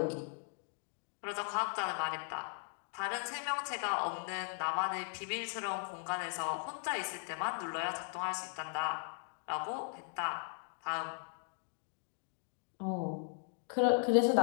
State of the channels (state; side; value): silent; right; 52 dB below the other